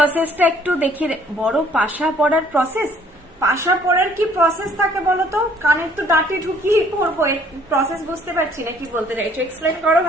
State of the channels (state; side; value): normal; both; correlation 0.60